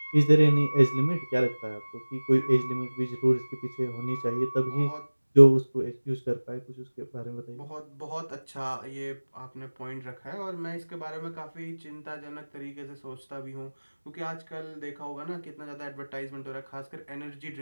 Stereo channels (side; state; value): both; inverted; correlation -1.00